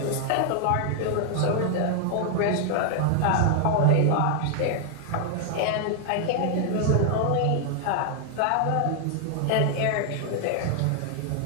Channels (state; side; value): different; both; correlation 0.00